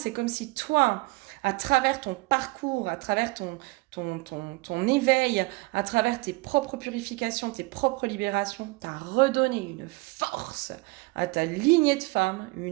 comme si toi, à travers ton parcours, à travers ton éveil, à travers tes propres purifications, tes propres libérations, tu as redonné une force à ta lignée de femmes,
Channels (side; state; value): left; quieter; 24.5 dB